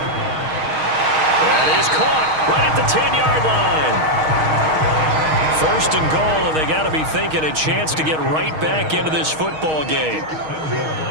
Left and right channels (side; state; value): left; late; 6.4 ms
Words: That is caught right at the 10-yard line. First and goal, and they got to be thinking a chance to get right back into this football game.